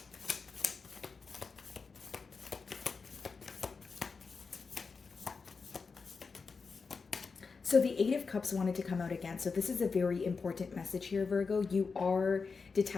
So the Eight of Cups wanted to come out again. So this is a very important message here, Virgo. You are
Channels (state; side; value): quieter; right; 4.9 dB